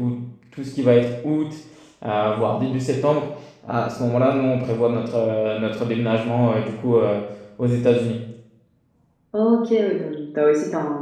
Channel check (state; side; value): identical; both; correlation 1.00